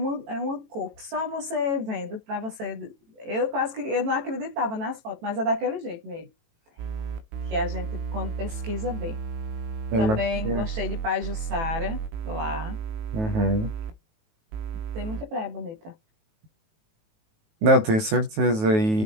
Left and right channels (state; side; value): late; left; 19 ms